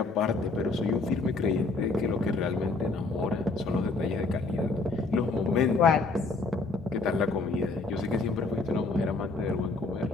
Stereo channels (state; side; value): quieter; right; 3.5 dB